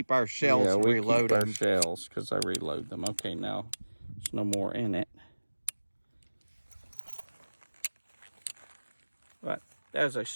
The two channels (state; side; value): inverted; both; correlation -1.00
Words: our shells and reload them. Yeah, we keep our shells because I reload them. Okay, now there's no more in it. But that is a